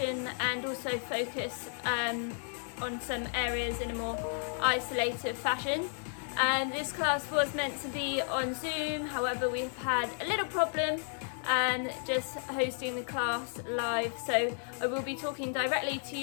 and also focus on some areas in a more isolated fashion. This class was meant to be on Zoom, however we've had a little problem just hosting the class live, so I will be talking directly to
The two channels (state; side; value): silent; right; 56 dB below the other